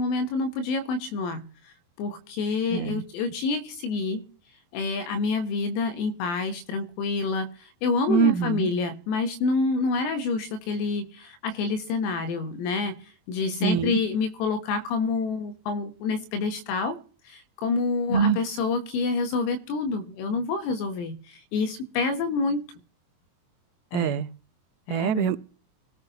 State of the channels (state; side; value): late; right; 23 ms